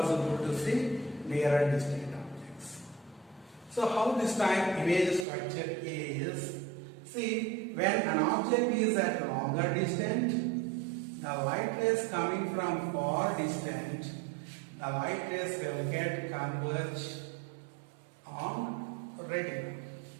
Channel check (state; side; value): drops out; left; at 5.2 s